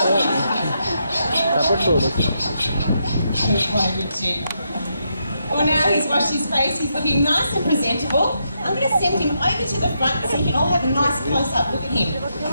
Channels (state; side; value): inverted; both; correlation -0.81